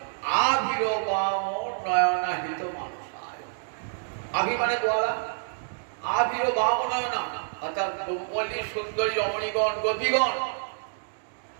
আবির্বাম নয়নাহিত মানুষ। আভি মানে গোয়ালা, আবির্বাম নয়না অর্থাৎ ব্রহ্মল্লী সুন্দরী রমণীগণ গোপীগণ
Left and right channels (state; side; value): silent; left; digital silence